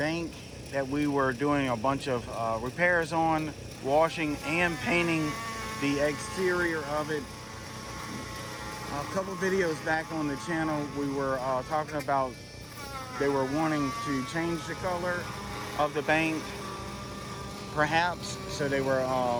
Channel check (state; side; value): identical; both; correlation 1.00